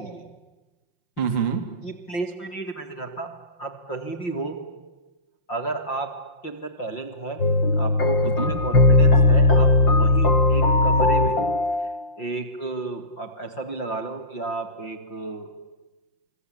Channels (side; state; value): right; late; 5.7 ms